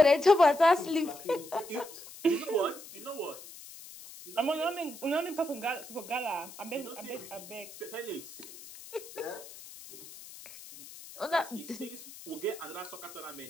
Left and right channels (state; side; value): noise; left; hiss, 16 dB below the sound